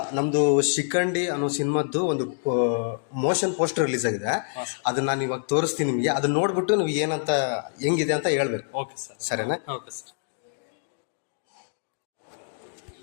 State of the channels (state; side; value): silent; right; digital silence